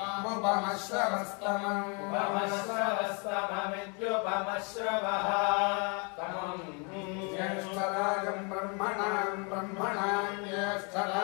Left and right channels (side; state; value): right; quieter; 34.5 dB